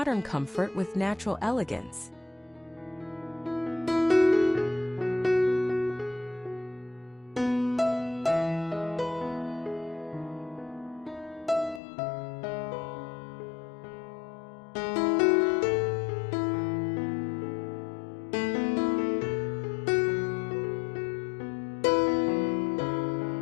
comfort with natural elegance.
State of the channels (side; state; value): right; drops out; at 11.8 s